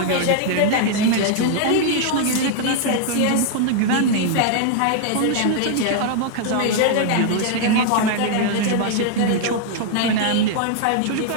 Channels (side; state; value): both; different; correlation 0.00